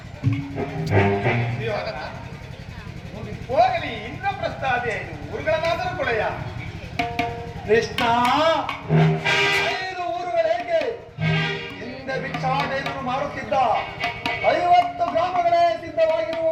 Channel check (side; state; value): both; identical; correlation 1.00